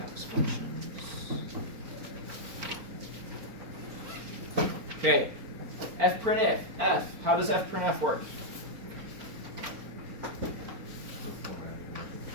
functions. Okay, fprintf. How does fprintf work?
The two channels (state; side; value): late; left; 4.4 ms